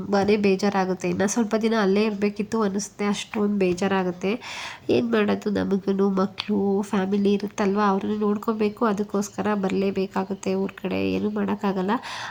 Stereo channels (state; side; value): identical; both; correlation 1.00